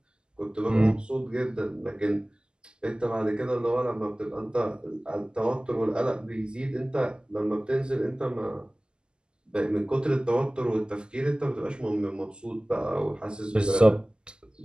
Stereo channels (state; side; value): late; left; 0.048 ms